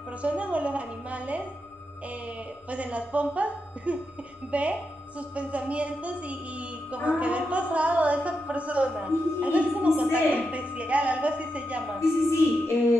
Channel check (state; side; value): normal; both; correlation 0.86